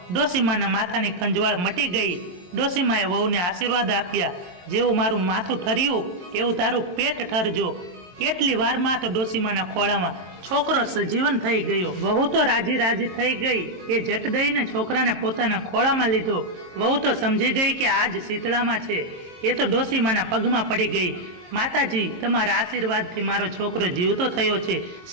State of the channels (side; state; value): left; late; 22 ms